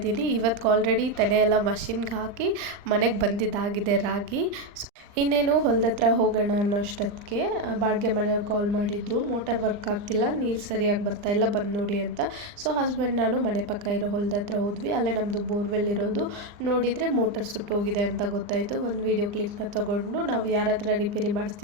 ಇವತ್ತು ಆಲ್ರೆಡಿ ತೆನೆ ಎಲ್ಲ ಮಷಿನ್ಗೆ ಹಾಕಿ ಮನೆಗೆ ಬಂದಿದ್ದಾಗಿದೆ ರಾಗಿ. ಇನ್ನೇನು ಹೊಲದ ಹತ್ರ ಹೋಗೋಣ ಅನ್ನೋ ಅಷ್ಟೊತ್ತಿಗೆ ಬಾಡಿಗೆ ಮನೆಯವ್ರು ಕಾಲ್ ಮಾಡಿದ್ರು. ಮೋಟರ್ ವರ್ಕ್ ಆಗ್ತಿಲ್ಲ, ನೀರು ಸರಿಯಾಗಿ ಬರ್ತಾಯಿಲ್ಲ, ಬಂದು ನೋಡಿ ಅಂತ. ಸೊ ಹಸ್ಬೆಂಡ್ ನಾನು ಮನೆ ಪಕ್ಕ ಇರೋ ಹೊಲದ ಹತ್ರ ಹೋದ್ವಿ. ಅಲ್ಲೇ ನಮ್ಮದು ಬೋರ್ವೆಲ್ ಇರೋದು. ನೋಡಿದರೆ ಮೋಟರ್ ಸುಟ್ಟೋಗಿದೆ ಅಂತ ಗೊತ್ತಾಯಿತು. ಒಂದು ವೀಡಿಯೋ ಕ್ಲಿಪ್ನ ತೊಗೊಂಡು ನಾವು ಯಾರ ಹತ್ರ ರಿಪೇರಿ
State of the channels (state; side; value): late; left; 39 ms